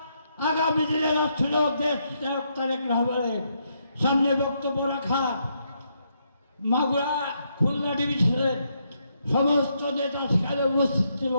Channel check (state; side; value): inverted; both; correlation -0.77